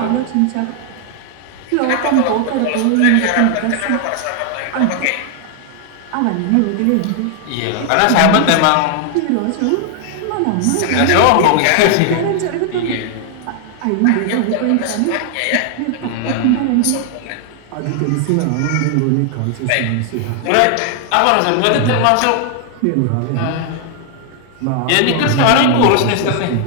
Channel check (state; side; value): different; both; correlation 0.00